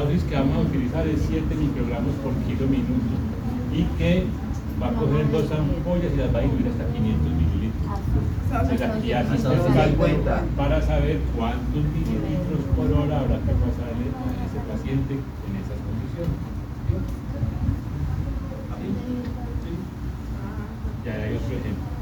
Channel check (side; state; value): both; identical; correlation 1.00